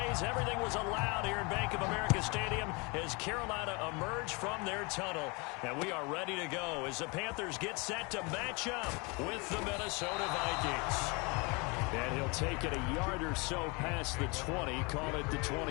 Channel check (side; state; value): right; quieter; 29.1 dB